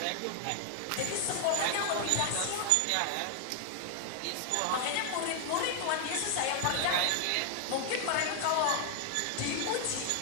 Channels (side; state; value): both; different; correlation 0.00